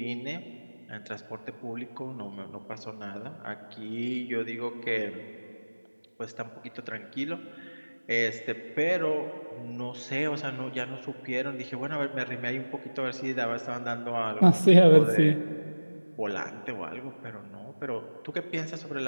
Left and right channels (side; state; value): both; inverted; correlation -1.00